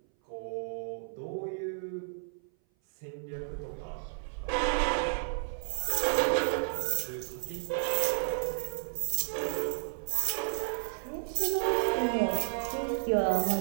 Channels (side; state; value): left; silent; 56 dB below the other